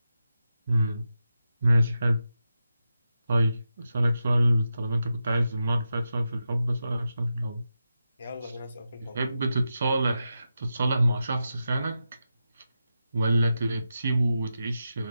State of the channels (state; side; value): inverted; both; correlation -0.89